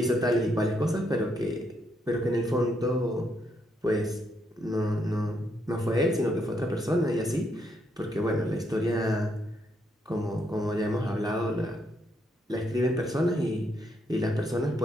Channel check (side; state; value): both; normal; correlation 0.76